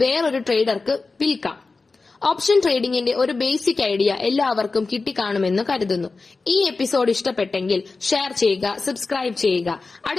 വേറൊരു ട്രേഡർക്ക് വിൽക്കാം. ഓപ്ഷൻ ട്രേഡിംഗിന്റെ ഒരു ബേസിക് ഐഡിയ എല്ലാവർക്കും കിട്ടിക്കാണുമെന്ന് കരുതുന്നു. ഈ എപ്പിസോഡ് ഇഷ്ടപ്പെട്ടെങ്കിൽ ഷെയർ ചെയ്യുക, സബ്സ്ക്രൈബ് ചെയ്യുക.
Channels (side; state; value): right; quieter; 3.9 dB